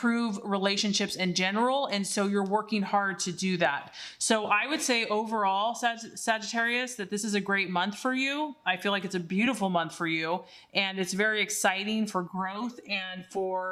relationships in general, and so you're working hard to do that. So I would say overall, Sagittarius, that this is a great month for you. I feel like it's a beautiful month for you, and it's very exciting for growth and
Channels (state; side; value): identical; both; correlation 1.00